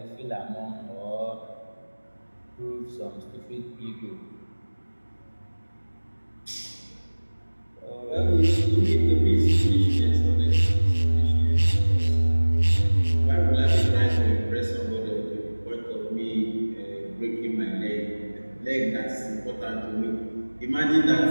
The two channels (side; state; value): both; inverted; correlation -1.00